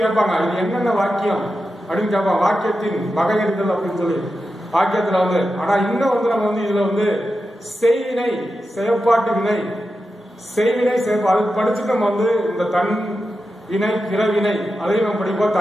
கேட்பாங்க, இது என்னென்ன வாக்கியம் அப்படின்னு கேட்பாங்க. வாக்கியத்தின் வகையறிதல் அப்படின்னு சொல்லி வாக்கியத்துல வந்து. ஆனா இன்னும் வந்து நம்ம வந்து இதுல வந்து செய்வினை, செயற்பாட்டு வினை, செய்வினை அதுக்கு படிச்சுட்டு நம்ம வந்து இந்த தன் வினை, பிறவினை அதையும் நம்ம படிப்போம்.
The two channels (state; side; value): normal; both; correlation 0.90